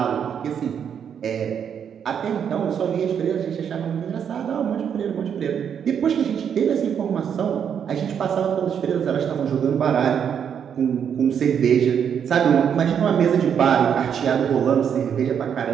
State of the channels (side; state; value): left; quieter; 8.0 dB